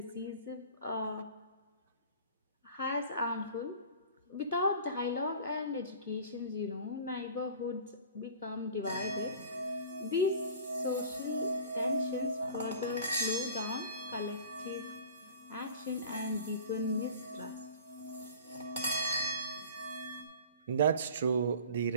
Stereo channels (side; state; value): both; inverted; correlation -0.43